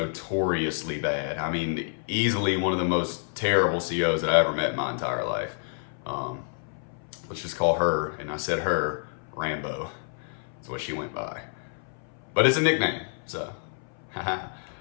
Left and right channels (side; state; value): right; silent; 59 dB below the other